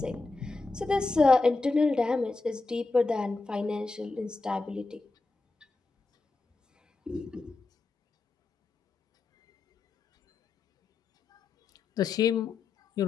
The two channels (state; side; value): quieter; right; 3.7 dB